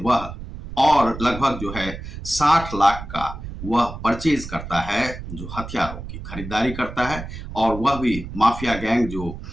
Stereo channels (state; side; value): noise; right; rumble, 10 dB below the sound